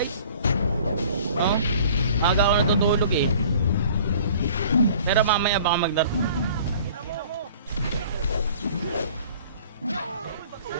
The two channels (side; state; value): both; inverted; correlation -0.50